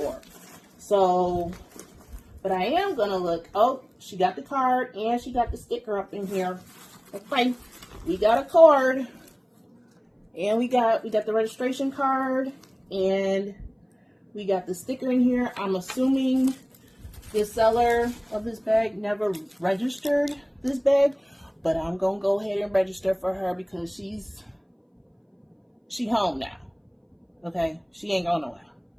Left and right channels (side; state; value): both; identical; correlation 1.00